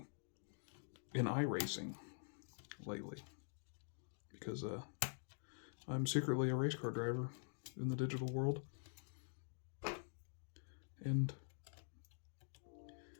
in iRacing lately, because I'm secretly a race car driver in the digital world, and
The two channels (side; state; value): right; silent; digital silence